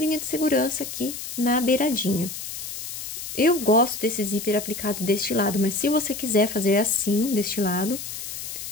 de segurança aqui na beiradinha. Eu gosto desse zíper aplicado deste lado, mas se você quiser fazer assim, deste lado,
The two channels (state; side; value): noise; left; hiss, 8 dB below the sound